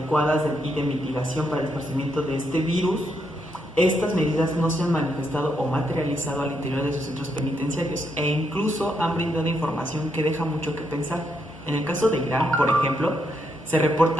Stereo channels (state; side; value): normal; both; correlation 0.78